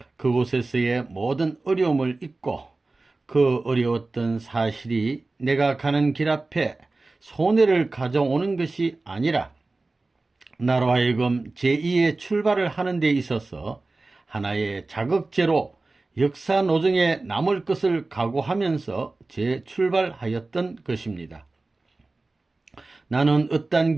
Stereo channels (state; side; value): quieter; left; 3.3 dB